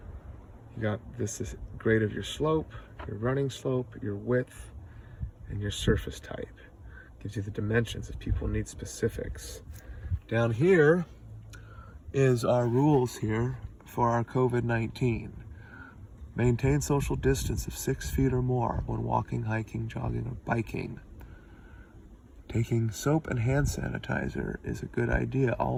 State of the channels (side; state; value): both; identical; correlation 1.00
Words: You got this is grade of your slope, your running slope, your width, and your surface type. Gives you the dimensions if people need specifics. Down here is our rules here for our COVID-19. Maintain social distance of 6 feet or more when walking, hiking, jogging, or biking. Taking soap and hand sanitizer is a good idea